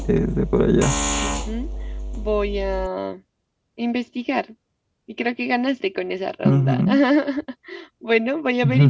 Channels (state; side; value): identical; both; correlation 1.00